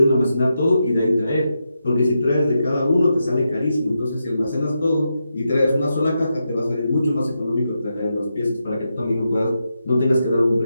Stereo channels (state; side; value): inverted; both; correlation -0.86